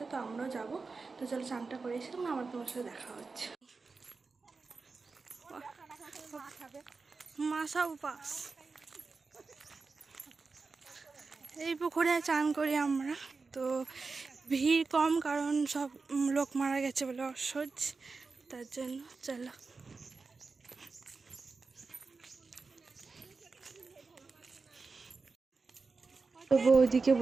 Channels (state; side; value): quieter; left; 4.3 dB